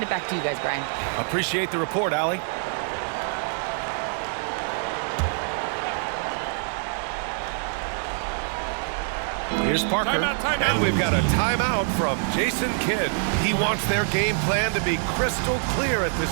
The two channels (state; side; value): silent; left; 62 dB below the other